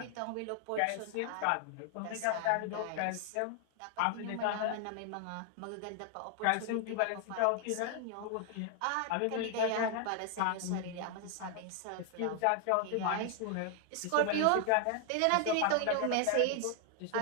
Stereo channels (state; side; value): different; both; correlation 0.00